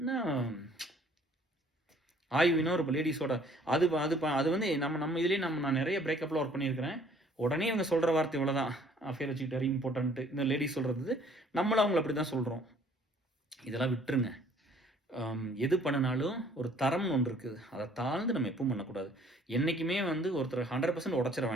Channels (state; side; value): normal; both; correlation 0.58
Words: ஆய்வினா ஒரு லேடிஸோட அது வந்து நம்ம இதுலேயே நான் நிறைய பிரேக்கப்பில் ஒர்க் பண்ணியிருக்கிறேன். உடனே இவங்க சொல்கிற வார்த்தை இவ்வளோதான், அஃபேர் வச்சுக்கிட்டாரு இம்பார்ட்டன்ட்டு. இந்த லேடிஸ் சொல்கிறது நம்மளும் அவங்கள அப்படி தான் சொல்கிறோம். இதெல்லாம் விட்டுருங்க. எது பண்ணினாலும் ஒரு தரம்னு ஒன்று இருக்குது, அதை தாழ்ந்து நம்ம எப்பவும் பண்ணக்கூடாது. என்றைக்குமே வந்து ஒருத்தர் 100% உடச்சிட